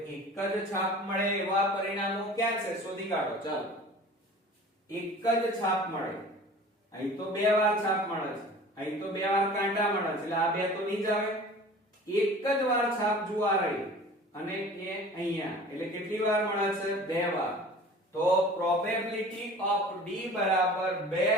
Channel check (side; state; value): both; normal; correlation 0.42